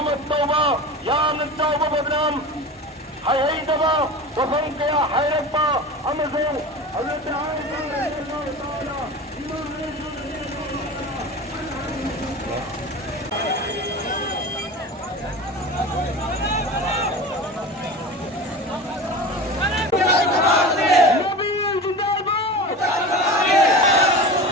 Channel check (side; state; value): both; normal; correlation 0.32